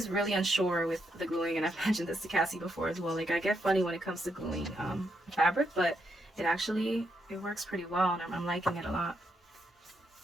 really unsure with the gluing, and I've mentioned this to Cassie before as well. Like, I get funny when it comes to gluing fabric, but it works pretty well, and I'm liking it a lot.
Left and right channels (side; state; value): both; normal; correlation 0.79